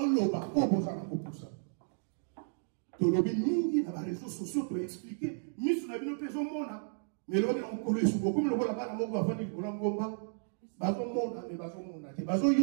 loma, bon vous allez pour ça. Tolobi mingi na ba réseaux sociaux to expliquer misu na bino peso mona mais lo na nkolo esuko comme le bola bana moko bafandi ko ngomba bazo mona mais bazo mona te bazo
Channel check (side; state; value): left; silent; digital silence